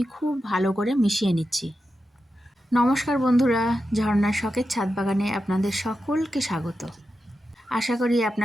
খুব ভালো করে মিশিয়ে নিচ্ছি। নমস্কার বন্ধুরা, ঝর্ণার শখের ছাদ বাগানে আপনাদের সকলকে স্বাগত। আশা করি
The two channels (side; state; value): both; normal; correlation 0.90